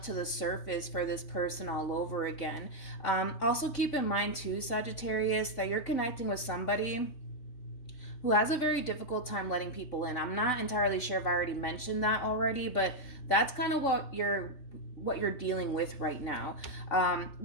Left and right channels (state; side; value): late; right; 3.5 ms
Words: to the surface for this person all over again. Also keep in mind too, Sagittarius, that you're connecting with somebody who has a very difficult time letting people in. I'm not entirely sure if I already mentioned that already, but that's kind of what you're dealing with right now.